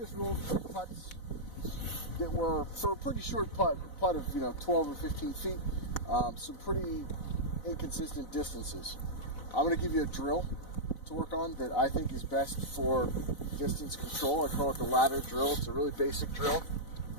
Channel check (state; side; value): late; right; 4.0 ms